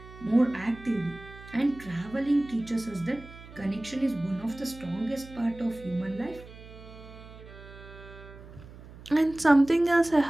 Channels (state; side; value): noise; right; hum, 18 dB below the sound